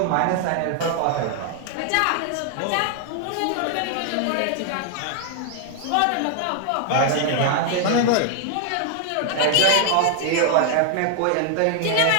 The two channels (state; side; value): different; both; correlation 0.00